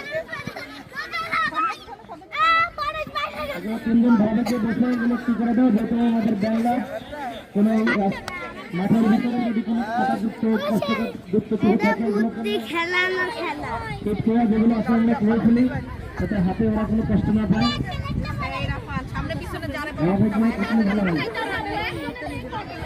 তিনজন ভাইকে বসে এগুলো কি করে দেওয়া যেহেতু আমাদের বাংলা কোন মাঠের ভিতরে যদি কোনো যুক্ত যেগুলো আসলে আমরা খেলে ফেলি যাতে হাতে ওরা কোনো কষ্ট না পায়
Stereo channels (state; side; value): identical; both; correlation 1.00